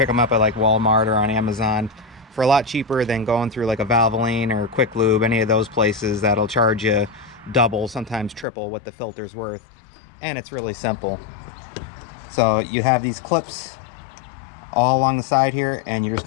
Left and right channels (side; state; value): right; drops out; at 8.5 s